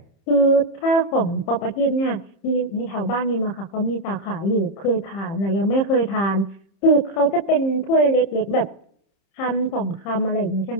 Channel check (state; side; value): late; right; 30 ms